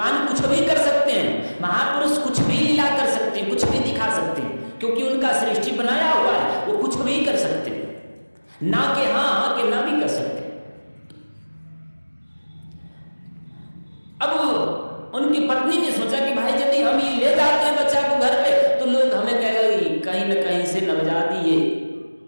कुछ भी कर सकते हैं, महापुरुष कुछ भी लीला कर सकते हैं, कुछ भी दिखा सकते हैं, क्योंकि उनका सृष्टि बनाया हुआ है, वो कुछ भी कर सकते हैं, ना के हाँ के ना भी कर सकते। अब उनकी पत्नी ने सोचा कि भाई यदि हम ये ले जाते हैं बच्चा को घर पे, तो लोग हमें कहेंगे कहीं न कहीं से नवजात ये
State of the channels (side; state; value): both; inverted; correlation -1.00